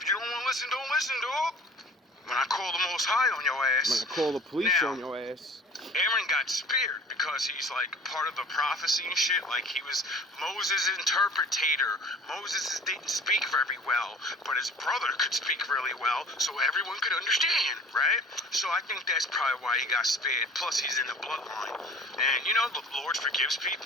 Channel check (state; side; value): normal; both; correlation 0.46